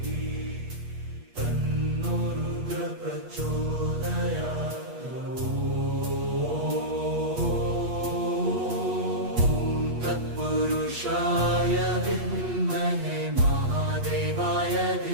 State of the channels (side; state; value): left; late; 8.3 ms